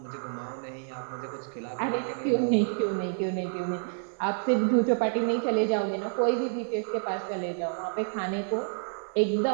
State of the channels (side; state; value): left; silent; digital silence